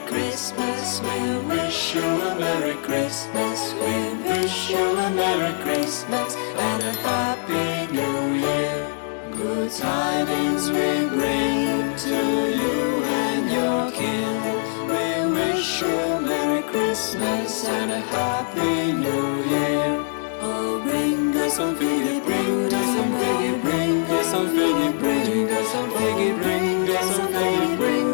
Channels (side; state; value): right; silent; digital silence